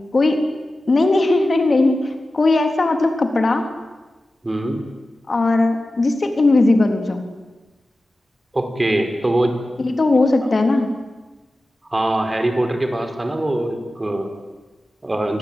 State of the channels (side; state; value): both; normal; correlation 0.94